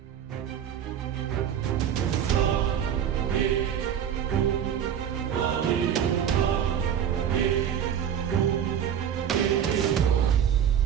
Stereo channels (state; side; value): quieter; left; 9.1 dB